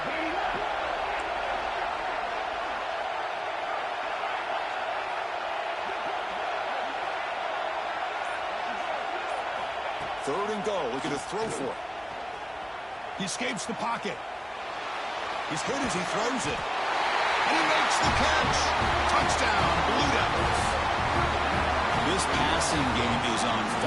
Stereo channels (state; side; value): identical; both; correlation 1.00